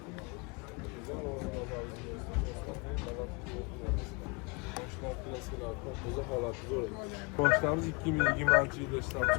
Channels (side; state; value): right; quieter; 30.8 dB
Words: Boshlarimiz 2020-yilda ishlab